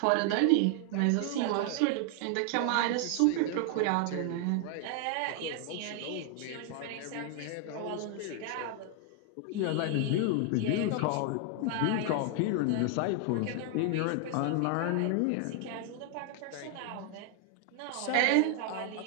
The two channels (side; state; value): both; different; correlation 0.00